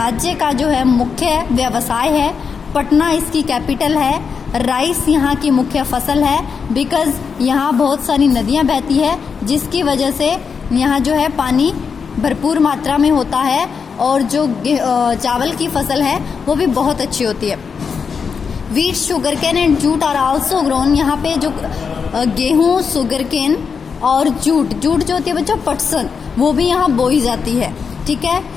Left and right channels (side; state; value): right; quieter; 5.9 dB